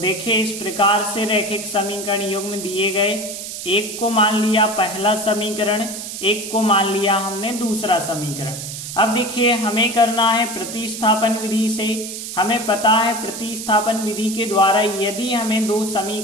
इस प्रकार से रैखिक समीकरण युग्म दिए गए। एक को मान लिया पहला समीकरण, एक को मान लिया हमने दूसरा समीकरण। अब देखिए, हमें करना है प्रतिस्थापन विधि से। हमें पता है प्रतिस्थापन विधि के द्वारा यदि हमें दो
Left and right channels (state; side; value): noise; right; hiss, 8 dB below the sound